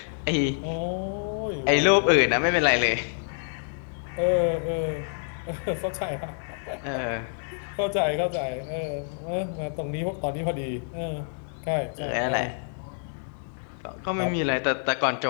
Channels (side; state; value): right; silent; digital silence